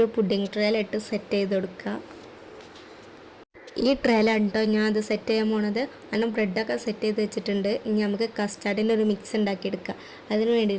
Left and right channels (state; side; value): identical; both; correlation 1.00